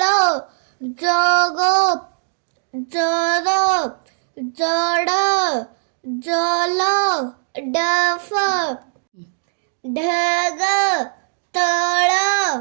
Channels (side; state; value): left; silent; digital silence